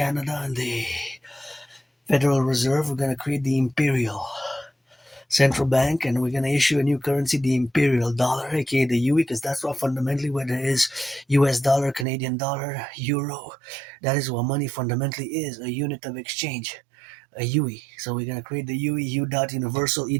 and the Federal Reserve. We're gonna create the Imperial Central Bank, and we're gonna issue a new currency, the Imperial Dollar, aka the UE, because that's what fundamentally what it is. US dollar, Canadian dollar, euro. That is what money fundamentally is, a unit of exchange, a UE. So we're gonna create the UE U dot universal E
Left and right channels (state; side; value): drops out; left; at 12.1 s